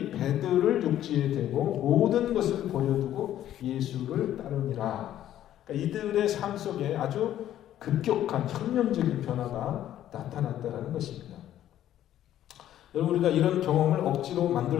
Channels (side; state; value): right; quieter; 12.0 dB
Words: 배들을 육지에 대고 모든 것을 버려두고 예수를 따르니라. 그러니까 이들의 삶 속에 아주 급격한 혁명적인 변화가 나타났다는 것입니다. 여러분, 우리가 이런 경험을 억지로 만들